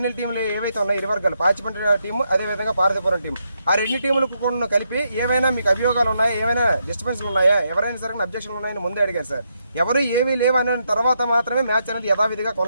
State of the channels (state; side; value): inverted; both; correlation -0.80